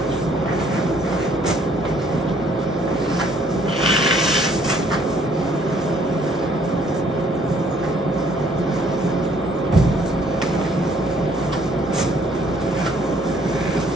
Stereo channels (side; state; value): both; normal; correlation 0.63